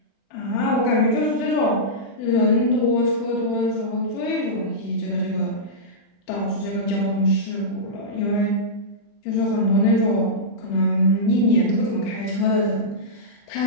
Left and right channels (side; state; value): right; late; 40 ms